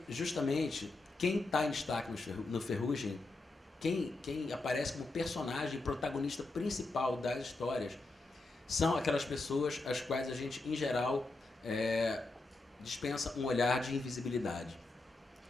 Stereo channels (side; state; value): right; quieter; 3.2 dB